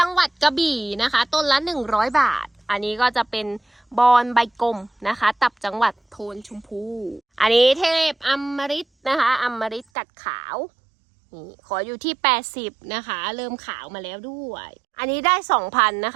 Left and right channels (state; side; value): drops out; left; at 9.9 s